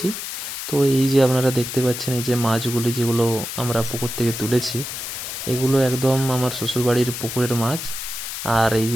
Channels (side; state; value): left; noise; hiss, 6 dB below the sound